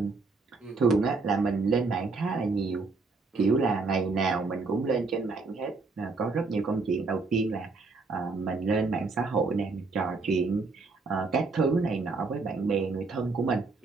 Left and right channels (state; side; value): quieter; left; 4.0 dB